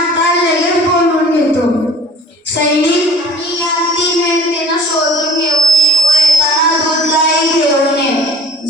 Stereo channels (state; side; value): normal; both; correlation 0.48